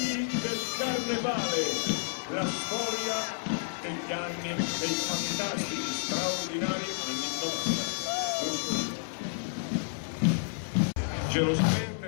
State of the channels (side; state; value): right; silent; 57 dB below the other